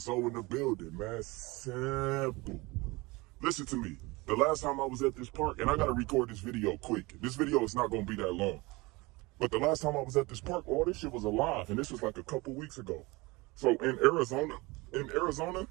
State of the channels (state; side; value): quieter; left; 23.7 dB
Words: soul in the building, man. Simple. Listen to me. The last time I was at this park, and I gotta record this video quick. This video is not gonna be that long. But the last time I was at this park, all this shit was alive, and this was like a couple weeks ago. So in Arizona,